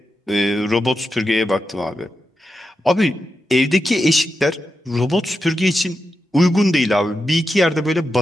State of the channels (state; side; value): normal; both; correlation 0.88